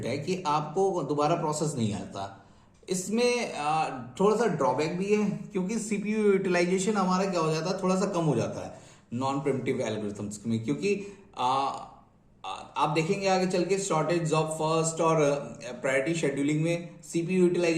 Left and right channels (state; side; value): identical; both; correlation 1.00